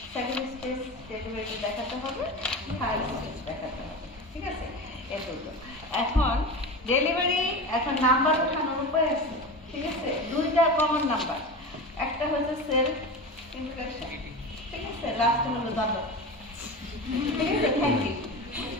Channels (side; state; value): both; normal; correlation 0.27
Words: second stage delivery দেখাতে হবে, থার্ড স্টেজ দেখাতে হবে, ঠিক আছে? এই দুটো। এখন ডেলিভারি, এখন নাম্বার ওঠানোর উপায় আছে, ঠিক আছে? দুইটা কমন নাম্বার, একটা হচ্ছে সেলফ ইন্ট্রোডাকশন, ঠিক আছে? লাস্ট হলো ধন্যবাদ, ঠিক আছে? থ্যাংক ইউ